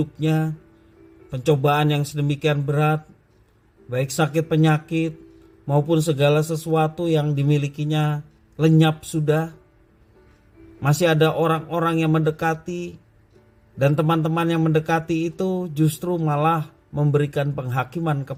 pencobaan yang sedemikian berat, baik sakit penyakit maupun segala sesuatu yang dimilikinya lenyap sudah, masih ada orang-orang yang mendekati, dan teman-teman yang mendekati itu justru malah memberikan penghakiman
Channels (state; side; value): identical; both; correlation 1.00